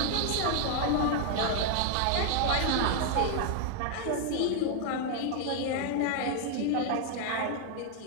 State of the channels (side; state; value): both; different; correlation 0.00